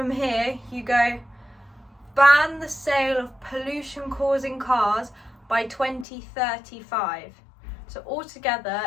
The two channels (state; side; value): drops out; right; at 6.1 s